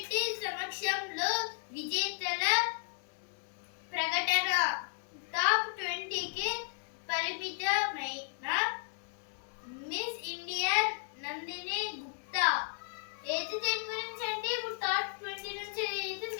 సమక్షంలో విజేతల ప్రకటన. టాప్ 20కి పరిమితమైన మిస్ ఇండియా నందిని గుప్తా. అయితే దీని గురించి అంటే ఇప్పుడు టాప్ 20 నుంచి అయితే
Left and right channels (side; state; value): right; silent; 55 dB below the other